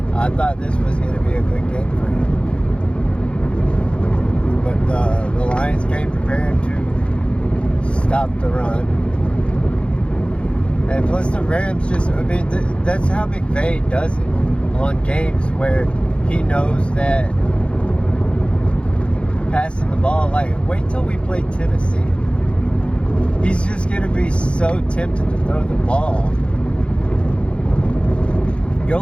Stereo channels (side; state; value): right; late; 0.058 ms